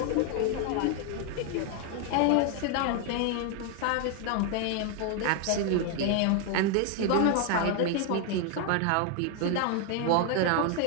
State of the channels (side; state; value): both; different; correlation 0.01